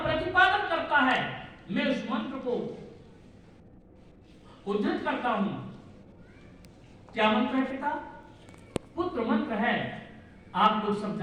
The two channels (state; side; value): identical; both; correlation 1.00